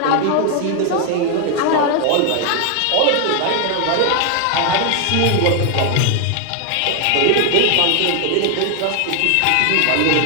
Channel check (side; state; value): both; different; correlation 0.00